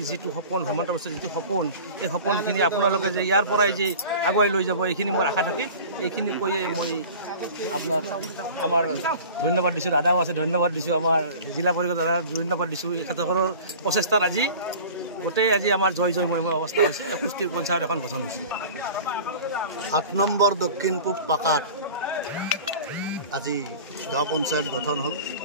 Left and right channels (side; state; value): both; inverted; correlation -0.40